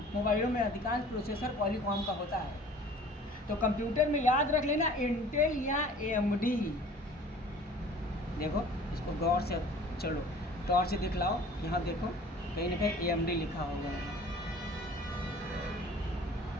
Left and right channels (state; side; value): normal; both; correlation 0.47